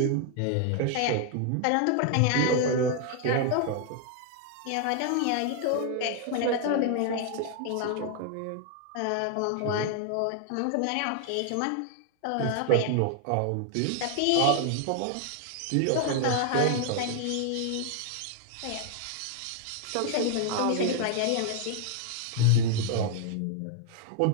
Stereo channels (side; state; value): both; different; correlation 0.00